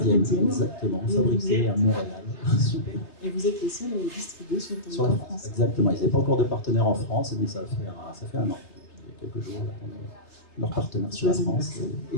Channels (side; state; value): right; late; 3.4 ms